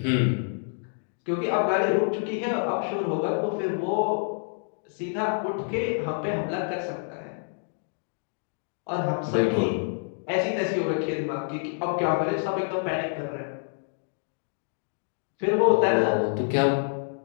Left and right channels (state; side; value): silent; right; digital silence